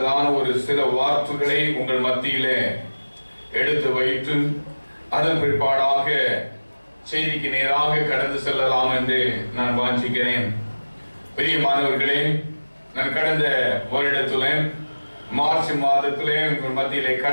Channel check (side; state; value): both; inverted; correlation -1.00